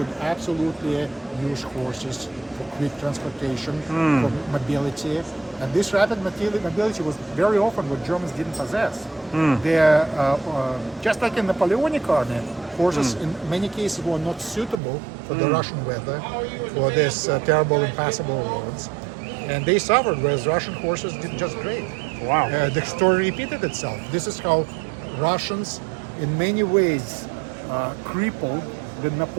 absolutely use horses for quick transportation, for mobility. And this rapid mobility was very often what Germans didn't possess. They're, just like in Napoleonic army, horses in many cases were not suitable for the Russian weather, for this terrible impassable roads. And they suffered, whereas Russian horses did just great. Wow. The story repeated itself. This is how Russians, in many ways, crippled the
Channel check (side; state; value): left; drops out; at 14.8 s